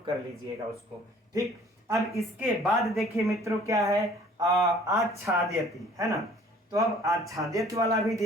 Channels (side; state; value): both; normal; correlation 0.53